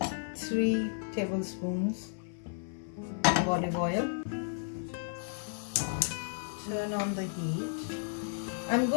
3 tablespoons of olive oil. Turn on the heat. I'm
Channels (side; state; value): right; silent; digital silence